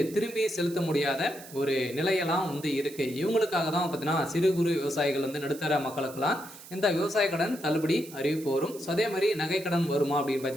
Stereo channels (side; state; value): right; noise; hiss, 17 dB below the sound